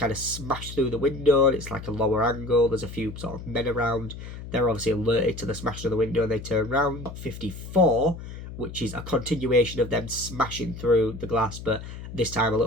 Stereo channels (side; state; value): left; noise; hum, 11 dB below the sound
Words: of smash through the window, and it's like a lower angle. There's a few sort of men around. They're obviously alerted to the smashing of the window and they turn around. Shot 54, which is a continuation of them smashing through the glass, but this time a